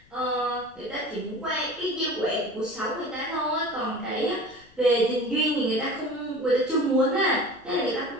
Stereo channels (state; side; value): noise; left; rumble, 28 dB below the sound